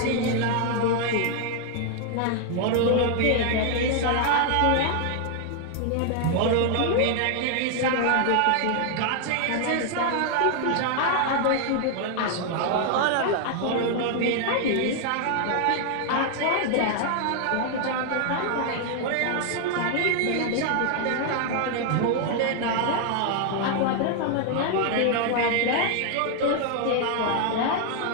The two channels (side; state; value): both; different; correlation 0.00